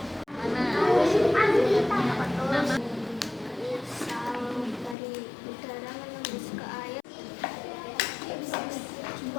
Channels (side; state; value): right; drops out; at 5.0 s